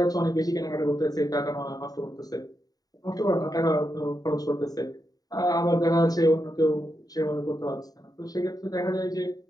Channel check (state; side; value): late; right; 0.18 ms